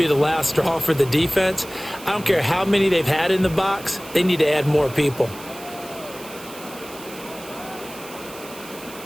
the last straw for the defense. I don't care how many they've had in the box. They need to add more people.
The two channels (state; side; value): noise; right; hiss, 17 dB below the sound